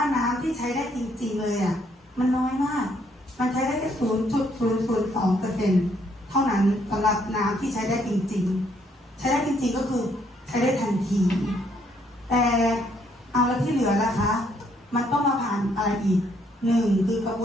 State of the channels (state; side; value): normal; both; correlation 0.69